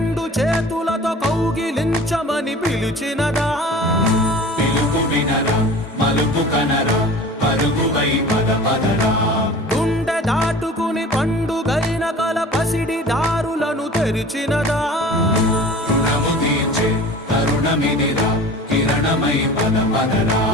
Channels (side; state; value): both; normal; correlation 0.41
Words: చేతులతో కౌగిలించమని పిలిచినదా పిలుపు వినరా మలుపు కనరా పరుగువై పద పదరా గుండె దాటుకుని పండుగైన కల పసిడి దారులను తెరిచినదా రుణము తీర్చే తరుణమిదిరా కిరణమై పద పదరా